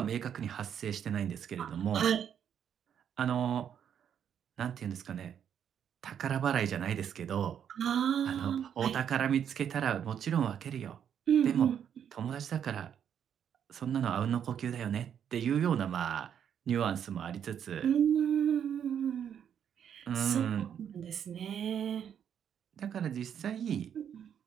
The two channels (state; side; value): quieter; left; 8.7 dB